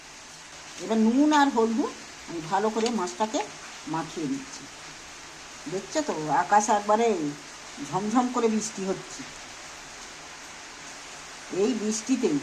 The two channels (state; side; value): identical; both; correlation 1.00